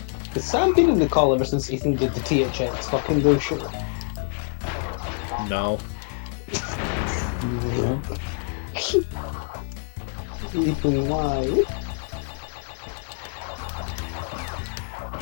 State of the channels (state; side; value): silent; right; digital silence